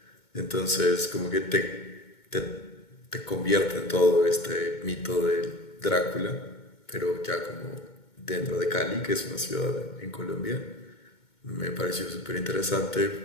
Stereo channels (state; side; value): late; right; 2.2 ms